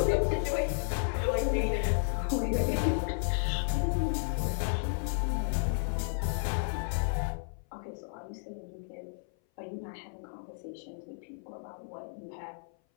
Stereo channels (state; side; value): silent; right; 56 dB below the other